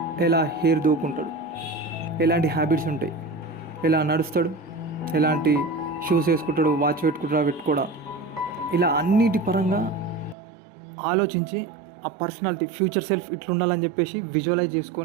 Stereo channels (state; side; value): drops out; left; at 10.4 s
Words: ఎలా హెయిర్ దూకుంటాడు, ఎలాంటి హ్యాబిట్స్ ఉంటాయి, ఎలా నడుస్తాడు, ఎలాంటి షూస్ వేసుకుంటాడు, వాచ్ పెట్టుకోడా, ఇలా అన్నిటి పరంగా ఆలోచించి ఆ పర్సనాలిటీ ఫ్యూచర్ సెల్ఫ్ ఇట్లా ఉండాలని చెప్పేసి విజువలైజ్